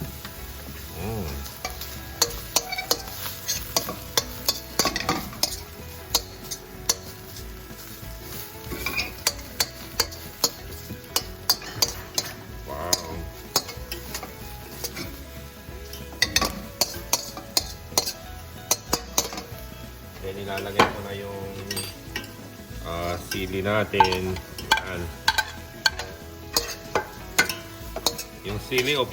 Then, ilalagay ko na yung sili natin. Yan. Yung sili,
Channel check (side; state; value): both; identical; correlation 1.00